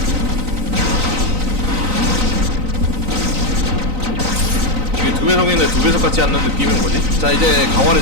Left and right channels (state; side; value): late; left; 3.9 ms